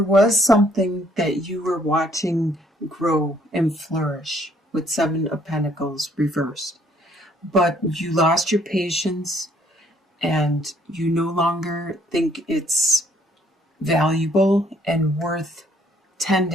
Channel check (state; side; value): normal; both; correlation 0.64